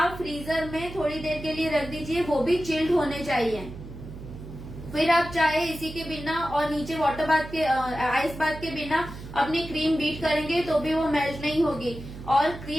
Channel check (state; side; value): noise; right; hum, 13 dB below the sound